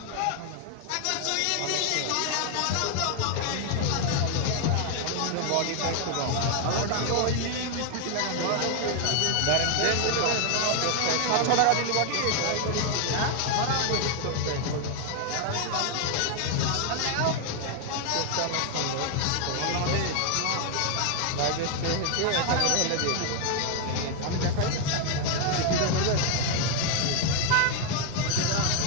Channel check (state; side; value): different; both; correlation 0.00